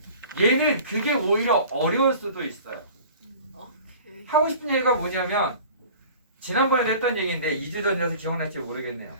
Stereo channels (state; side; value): inverted; both; correlation -0.44